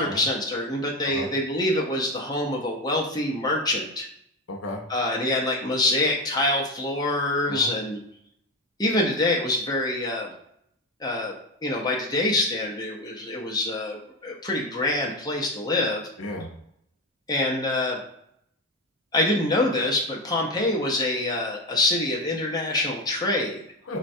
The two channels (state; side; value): normal; both; correlation 0.15